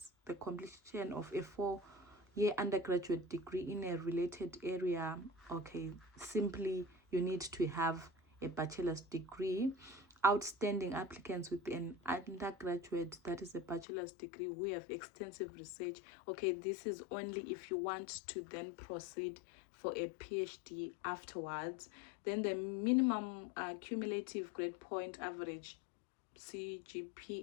the completion of a 4-year undergraduate degree in a related area. Okay, simply you need to have a bachelor's degree. Outstanding applicants with an undergraduate, that is a bachelor's degree, who have extensive research. Okay, this is only if you want to then proceed for a PhD afterwards. Then the minimum cumulative grade point average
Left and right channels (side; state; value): right; drops out; at 13.9 s